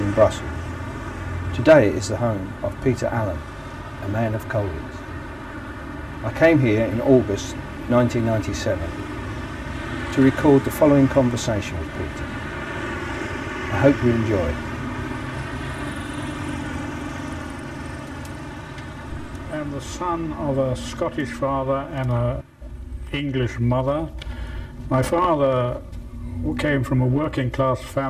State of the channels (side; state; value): both; identical; correlation 1.00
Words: Brussels. Today it is the home of Peter Allen, a man of Colditz. I came here in August 1997 to record the following conversation with Peter. I hope you enjoy it. I'm the son of a Scottish father and an English mother. My father came from a working class